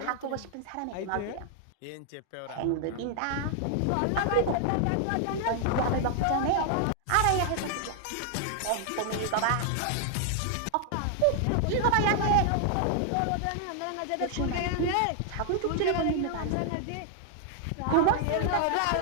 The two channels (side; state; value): both; different; correlation 0.00